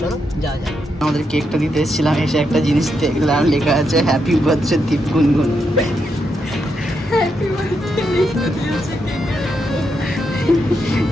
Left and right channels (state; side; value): normal; both; correlation 0.82